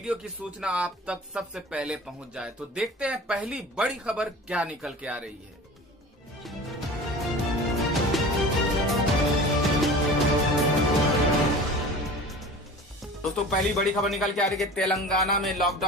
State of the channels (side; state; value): both; normal; correlation 0.38